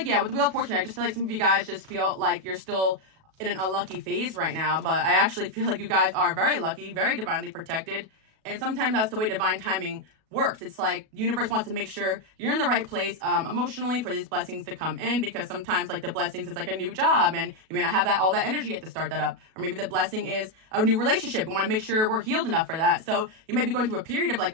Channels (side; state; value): left; late; 37 ms